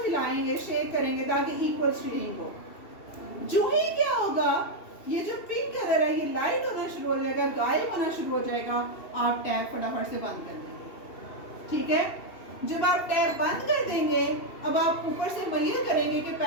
हिलाएंगे शेक करेंगे ताकि इक्वल शेडिंग हो जो ही क्या होगा ये जो पिंक कलर है ये लाइट होना शुरू हो जाएगा गायब होना शुरू हो जाएगा आप टैप फटाफट से बंद कर देंगे। ठीक है जब आप टैप बंद कर देंगे अब आप ऊपर से मेजर करेंगे कि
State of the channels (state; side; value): late; right; 2.7 ms